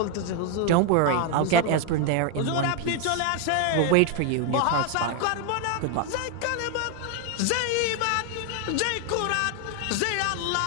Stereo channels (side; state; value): both; different; correlation 0.01